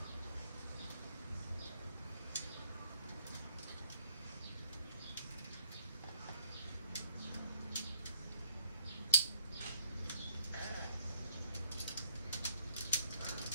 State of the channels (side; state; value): both; inverted; correlation -0.65